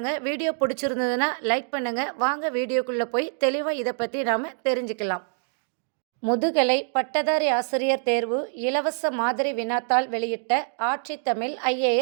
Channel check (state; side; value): silent; left; 61 dB below the other